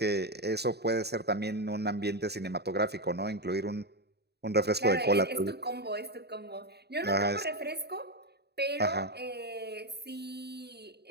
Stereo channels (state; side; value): late; left; 0.48 ms